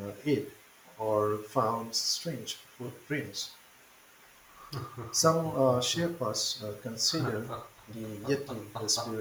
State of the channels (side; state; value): both; identical; correlation 1.00